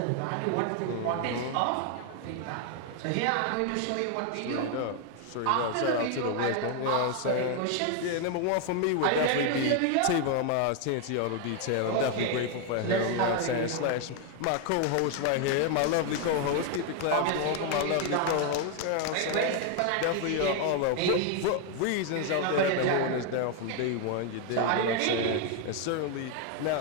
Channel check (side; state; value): both; different; correlation 0.01